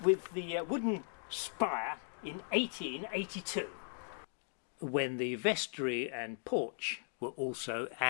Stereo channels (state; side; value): silent; right; digital silence